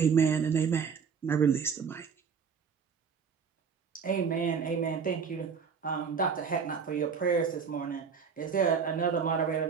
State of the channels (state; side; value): quieter; left; 6.2 dB